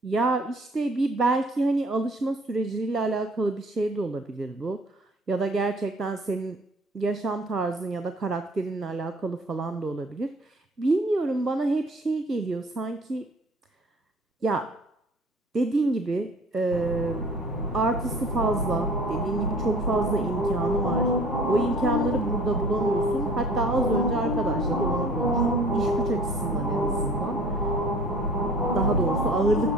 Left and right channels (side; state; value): both; normal; correlation 0.49